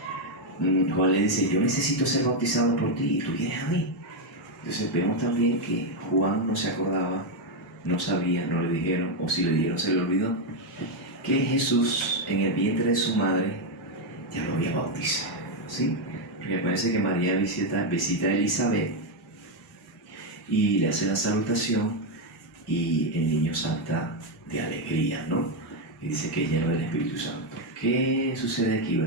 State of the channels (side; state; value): both; normal; correlation 0.04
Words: Juan le dice: yo necesito ser bautizado por ti y tú vienes a mí. Entonces vemos también que Juan no se acordaba, no sabía, no le dijeron, o si le dijeron se le olvidó, que Jesús en el vientre de su madre ya lo había bautizado, ¿sí? Porque parece que María visita a Elizabeth y le hace la salutación y el niño salta de alegría, ¿no? Y dice que es lleno del Espíritu Santo. ¿Qué sucede aquí?